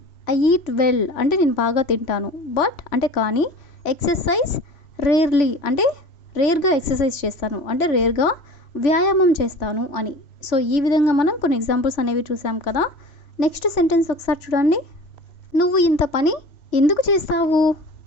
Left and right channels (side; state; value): right; late; 3.0 ms